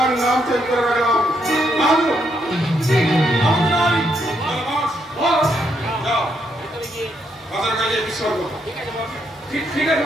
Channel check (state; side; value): normal; both; correlation 0.77